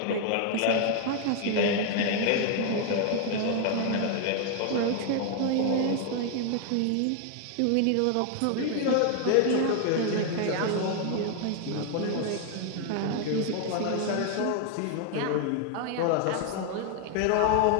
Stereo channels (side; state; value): both; different; correlation 0.00